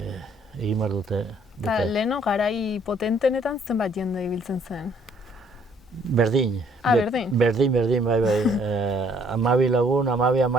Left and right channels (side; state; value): both; normal; correlation 0.63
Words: behar dute. Eta leheno garai potentenetan zenbat jende ibiltzen zen? Berdin. Berdin? Berdin, bai. 12 lagun,